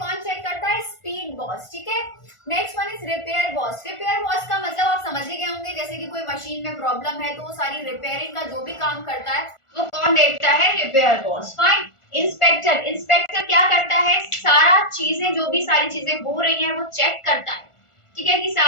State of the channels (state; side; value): late; right; 1.4 ms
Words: चेक करता है? स्पीड बॉस, ठीक है। Next one is repair boss. Repair boss का मतलब आप समझ ही गए होंगे, जैसे कि कोई मशीन में प्रॉब्लम है तो वो सारी रिपेयरिंग का जो भी काम करता है वो कौन देखता है? Repair boss. Fine, inspector. Inspector क्या करता है? सारा चीजें, जो भी सारी चीजें हो रही हैं वो चेक करता है, ठीक है, कि